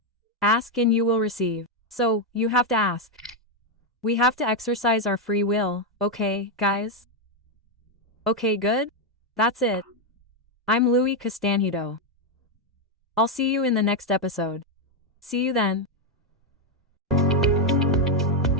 Ask and you will receive. So, you have to ask. We have to exercise our free will, okay, guys? Okay, good? That's it. I'm Louise Castanhedo. I'll see you in the next episode. See you then.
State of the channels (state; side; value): normal; both; correlation 0.03